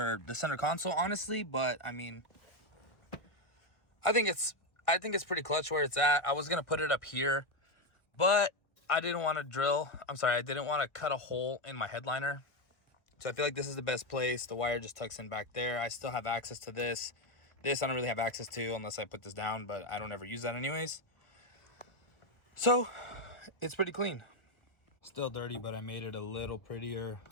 the center console, honestly, but I mean, I think it's pretty clutch where it's at. I was gonna put it up here, but I didn't want to I didn't want to cut a hole in my headliner. So I feel like this is the best place. The wire just tucks in back there. I still have access to this. This I don't really have access to unless I put this down, but I don't ever use that anyways. So it's pretty clean. Still dirty, but I made it a little prettier.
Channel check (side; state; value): right; late; 1.1 ms